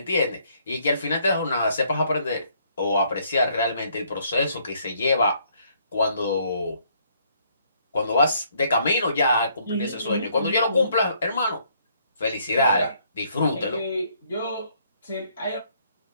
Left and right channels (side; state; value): both; inverted; correlation -0.67